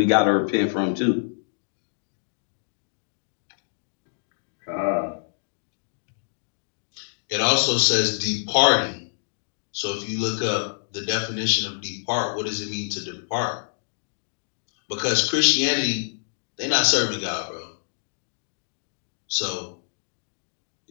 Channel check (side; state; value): right; silent; digital silence